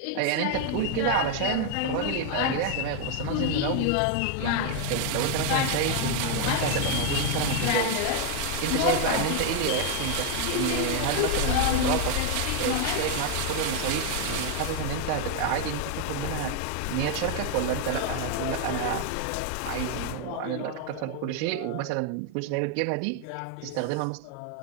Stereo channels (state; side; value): different; both; correlation 0.01